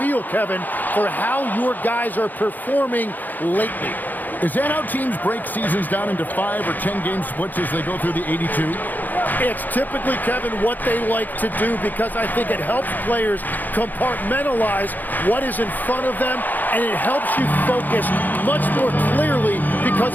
Kevin, for how your guys are performing lately. Is that how teams break seasons down into 5 or 10-game splits as they go through the 82? It's typically, Kevin, what they like to do because I think it helps players compartmentalize what is in front of them, and it helps you focus much more clearly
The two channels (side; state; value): right; late; 0.085 ms